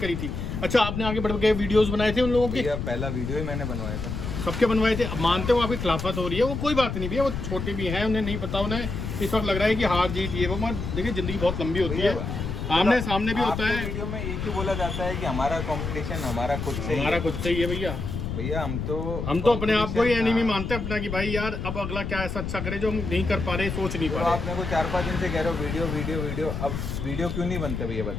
थी? अच्छा, आपने आगे बढ़ के वीडियोस बनाए थे उन लोगों के? पहला वीडियो ही मैंने बनवाया था, सबके बनवाए थे। अब मानते हो आपकी खिलाफत हो रही है, वो कोई बात नहीं भैया, वो छोटे भी हैं, उन्हें नहीं पता, उन्हें इस वक्त लग रहा है कि हार जीत ये वो, मगर देखिए जिंदगी बहुत लंबी होती है, आमने सामने भी होता है। वीडियो में ये क्यों बोला जाता है कि हमारा कंपटीशन हमारा खुद से ही है भैया। भैया हम तो अपने आप को ही एनिमी मानते हैं अपना, कि भाई यार अब अगला क्या ऐसा अच्छा करे जो हम नहीं कर पा रहे, सोच नहीं पा रहे। आप मेरे को 4-5 दिन से कह रहे हो वीडियो वीडियो वीडियो, अब वीडियो क्यों नहीं बनते भैया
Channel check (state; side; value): noise; left; rumble, 4 dB below the sound